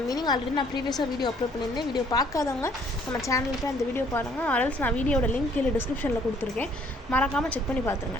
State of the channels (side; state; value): both; normal; correlation 0.62